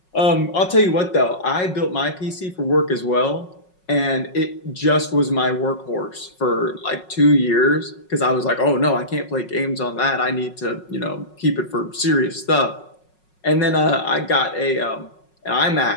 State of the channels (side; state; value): right; late; 5.5 ms